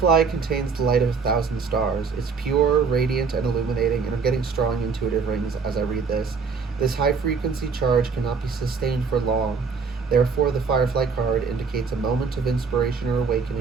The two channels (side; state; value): left; quieter; 5.2 dB